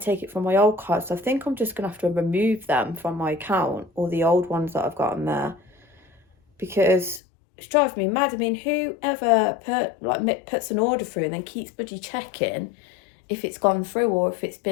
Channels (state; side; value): drops out; right; at 7.2 s